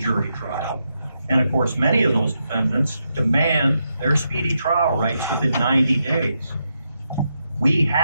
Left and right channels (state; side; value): inverted; both; correlation -0.84